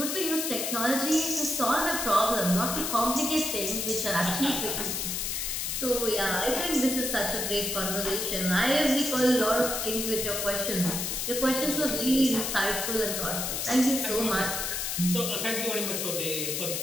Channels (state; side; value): noise; left; hiss, 1 dB below the sound